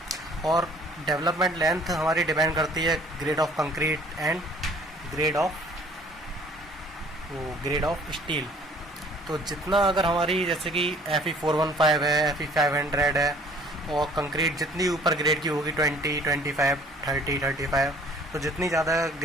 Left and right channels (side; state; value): both; normal; correlation 0.55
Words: और डेवलपमेंट लेंथ हमारी डिपेंड करती है grade of concrete and grade of steel. तो जितना अगर हमारी जैसे कि Fe 415 है, Fe 500 है और कंक्रीट जितनी ऊपर ग्रेड की होगी 20, 25, 30, 35, तो जितनी ज़्यादा